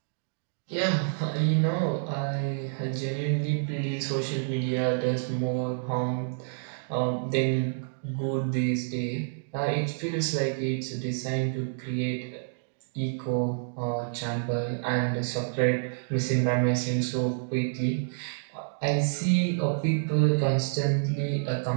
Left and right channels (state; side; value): silent; left; digital silence